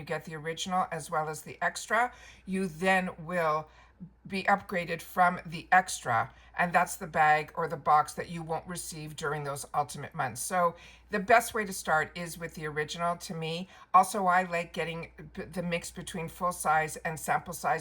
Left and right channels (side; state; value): both; identical; correlation 1.00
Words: get the original as well as the extra, you then will be upgraded from the extra, and that's the bag or the box that you won't receive during those ultimate months. So the best way to start is with the original to me. Also, I like getting the mix between full size and sample